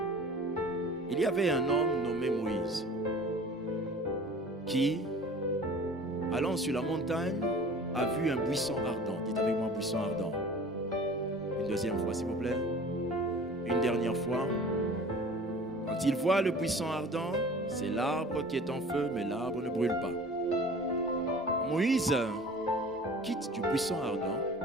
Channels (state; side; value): normal; both; correlation 0.44